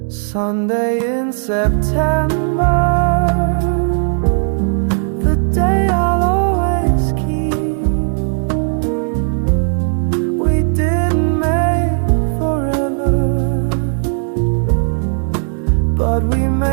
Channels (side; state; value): left; silent; 69 dB below the other